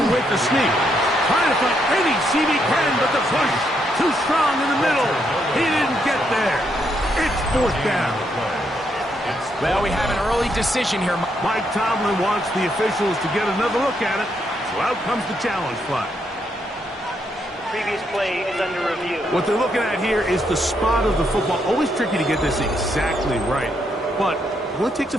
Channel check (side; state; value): both; normal; correlation 0.77